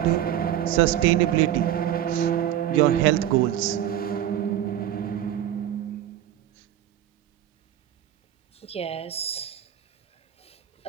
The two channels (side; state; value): left; quieter; 11.5 dB